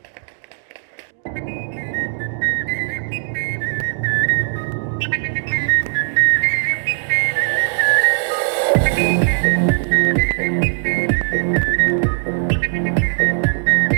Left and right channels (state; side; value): silent; left; digital silence